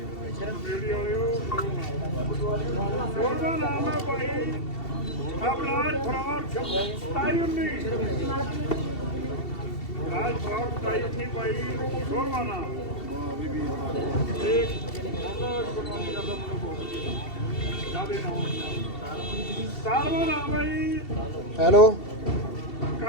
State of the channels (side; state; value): right; late; 2.7 ms